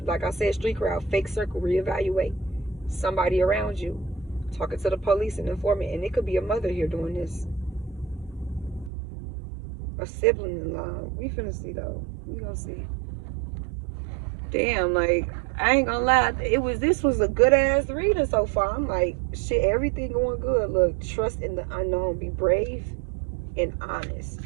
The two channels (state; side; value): drops out; left; at 8.9 s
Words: like I said, street crowd, fake circle, reevaluate. Somebody around you talking to the police and informant. And it could be a mother here doing this. A sibling-in-law. We finna see though. We gonna see. Damn, like, I ain't gonna lie, this was a good ass reading so far. I'm like, shit, everything going good. Look, trust in the unknown. Be brave and honest.